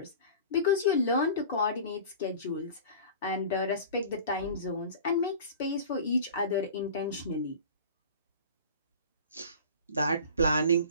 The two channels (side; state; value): both; inverted; correlation -0.39